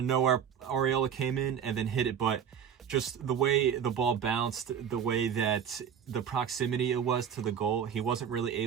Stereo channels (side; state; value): left; quieter; 8.3 dB